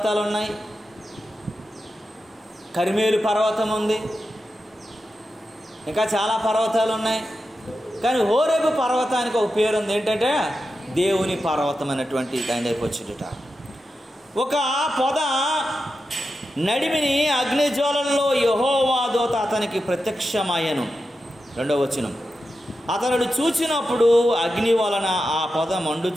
ఉన్నాయి. కర్మేలు పర్వతం ఉంది, ఇంకా చాలా పర్వతాలు ఉన్నాయి. కానీ హోరేబు పర్వతానికి ఒక పేరు ఉంది, ఏంటంటే దేవుని పర్వతం అనేటువంటి దాని దగ్గరికి వచ్చేట. ఒక పొద నడిమిని అగ్నిజ్వాలల్లో యెహోవా దూత అతనికి ప్రత్యక్షమయ్యను. 2వ వచనం, అతడు చూచినప్పుడు అగ్ని వలన ఆ పొద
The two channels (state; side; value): normal; both; correlation 0.90